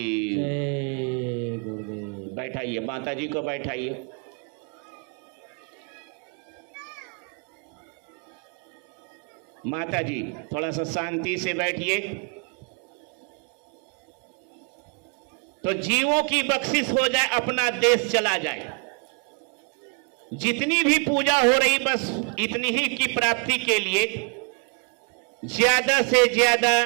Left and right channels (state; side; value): quieter; left; 38.9 dB